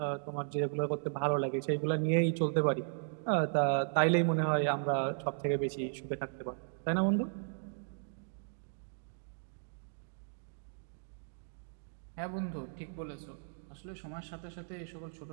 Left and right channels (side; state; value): left; silent; digital silence